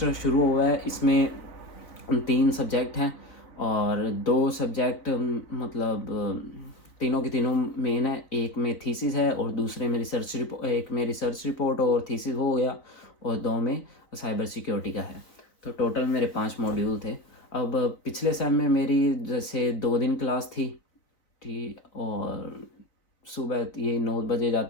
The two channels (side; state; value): right; late; 4.0 ms